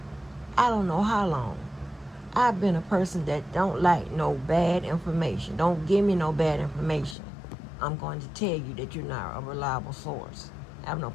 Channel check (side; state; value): right; drops out; at 7.2 s